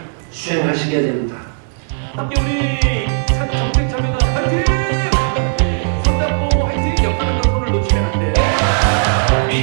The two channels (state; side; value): silent; left; 63 dB below the other